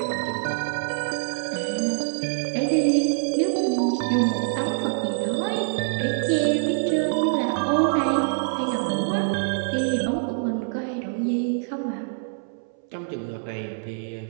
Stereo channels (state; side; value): silent; left; 62 dB below the other